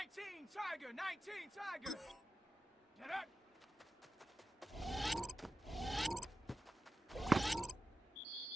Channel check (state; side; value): normal; both; correlation 0.92